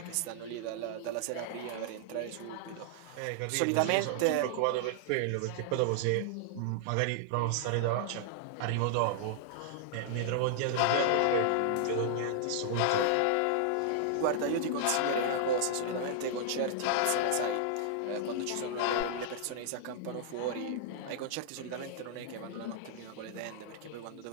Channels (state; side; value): different; both; correlation -0.01